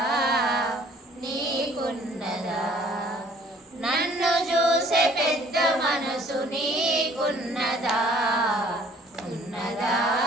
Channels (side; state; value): both; normal; correlation 0.56